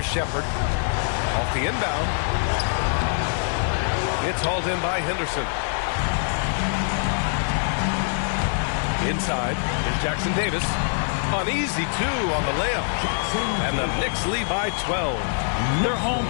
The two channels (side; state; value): right; silent; 63 dB below the other